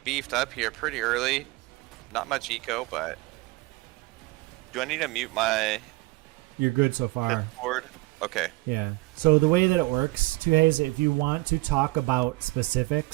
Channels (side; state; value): left; quieter; 22.4 dB